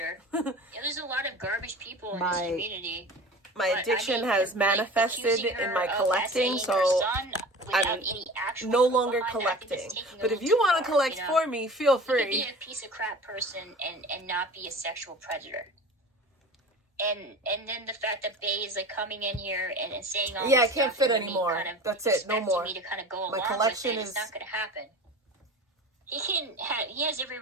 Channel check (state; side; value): normal; both; correlation 0.37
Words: There's a lot of garbage people in this community. My addiction has manifested in my collecting, so I'm no longer collecting. But if you want to collect for me, feel free. You could be a piece of crap person and not be a sexual predator. And then the fact that Bae is coming in here and saying all this I can't fit anymore. Kind of that's it, no more. Me to kind of go my along collection with it. is It's not going to happen. He has every